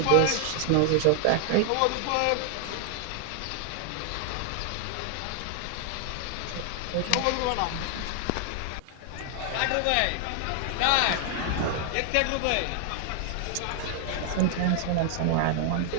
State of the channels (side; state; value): both; different; correlation 0.00